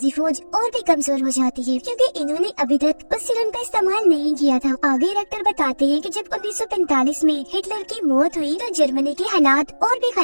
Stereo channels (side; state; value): both; inverted; correlation -1.00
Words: फौज और भी कमजोर हो जाती है क्योंकि इन्होंने अभी तक उस सीरम का इस्तेमाल नहीं किया था। आगे रेक्टर बताते हैं कि जब 1945 में हिटलर की मौत हुई तो जर्मनी के हालात और भी